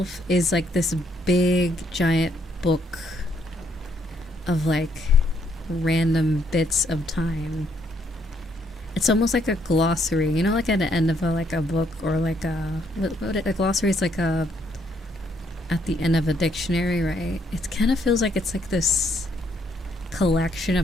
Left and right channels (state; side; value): normal; both; correlation 0.71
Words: is like this big giant book of like random bits of time. It's almost like a glossary, you know, like at the end of a book, or like a glossary is like at the end of a dictionary, right? It kind of feels like it's like this collection